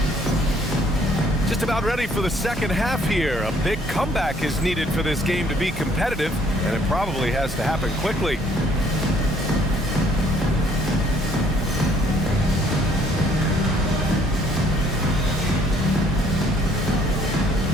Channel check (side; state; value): both; normal; correlation 0.63